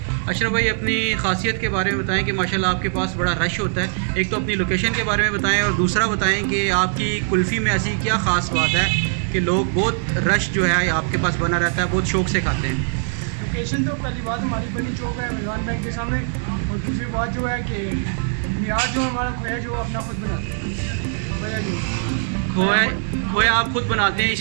अशरफ भाई, अपनी ख़ासियत के बारे में बताएं कि माशाल्लाह आपके पास बड़ा रश होता है। एक तो अपनी लोकेशन के बारे में बताएं और दूसरा बताएं कि आपकी कुल्फ़ी में ऐसी क्या ख़ास बात है कि लोग बहुत रश जो है आपके पास बना रहता है, बहुत शौक़ से खाते हैं। लोकेशन तो पहली बात हमारी बनी चौक है, मिलान बैंक के सामने। और दूसरी बात जो है कि मियार जो हमारा खोया जो अपना खुद बनाते हैं, खोया आप खुद बनाते हैं,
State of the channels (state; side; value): silent; left; digital silence